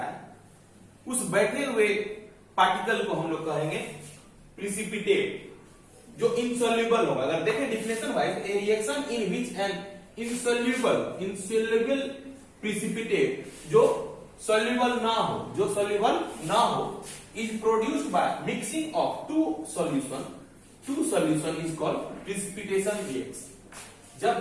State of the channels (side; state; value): both; identical; correlation 1.00